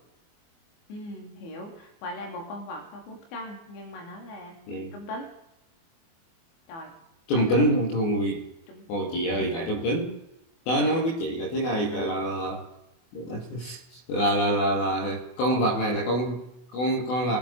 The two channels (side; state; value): right; late; 24 ms